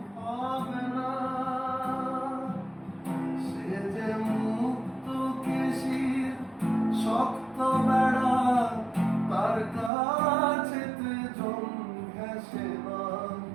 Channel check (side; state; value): left; drops out; at 9.9 s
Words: হবে না। সে যে মুক্ত কেশির শক্ত বেড়া, তার কাছেতে জন ঘেঁষে না।